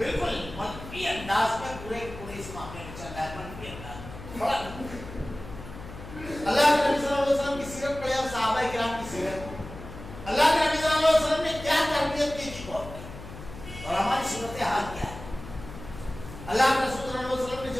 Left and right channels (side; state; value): left; noise; hum, 13 dB below the sound